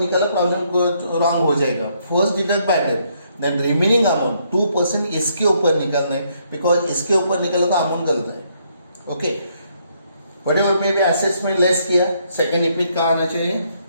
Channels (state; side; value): inverted; both; correlation -0.72